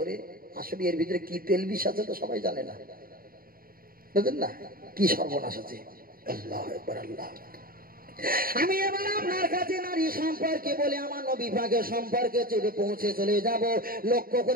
আসলে এর ভিতরে কি তেল বিষ আছে তো সবাই জানে না, বুঝলেন না? কি সর্বনাশ আছে। আল্লাহু আকবার, আল্লাহ। আমি এবার আপনার কাছে নারী সম্পর্কে বলে আমার নবী পাকের সম্পর্কে পৌঁছে চলে যাব। লক্ষ্য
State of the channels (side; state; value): left; late; 0.42 ms